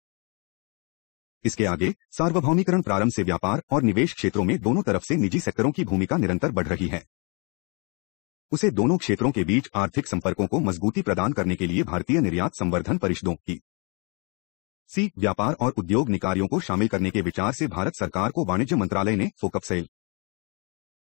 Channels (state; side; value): quieter; right; 33.4 dB